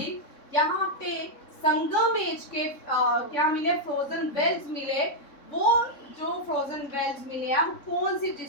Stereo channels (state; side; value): late; right; 3.6 ms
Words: यहाँ पे संगमेश के क्या मिले? फ्रोजन वेल्स मिले। वो जो फ्रोजन वेल्स मिले हैं कौन सी